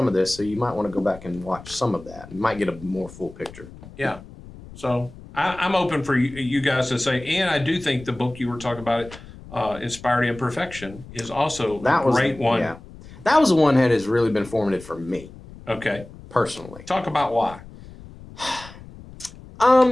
of this, so you might want to go back and watch some of that. You might get a more full picture. Yeah. So I'm open for you guys to say, and I do think the book you were talking about, Inspired Imperfection, is also That a was great one. Yeah. That was the one that has really been formative for me Okay. personally. Talk about why.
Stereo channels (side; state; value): left; noise; rumble, 18 dB below the sound